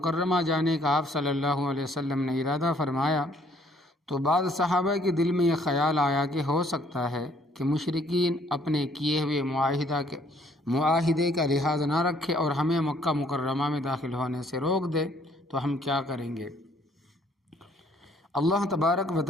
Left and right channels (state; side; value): normal; both; correlation 0.63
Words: جانے کا آپ صلی اللہ علیہ وسلم نے ارادہ فرمایا تو بعض صحابہ کے دل میں یہ خیال آیا کہ ہو سکتا ہے کہ مشرکین اپنے کیے ہوئے معاہدے کا لحاظ نہ رکھے اور ہمیں مکہ مکرمہ میں داخل ہونے سے روک دے، تو ہم کیا کریں گے؟ اللہ تبارک و